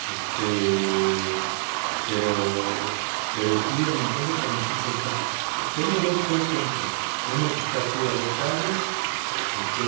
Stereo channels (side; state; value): left; silent; 55 dB below the other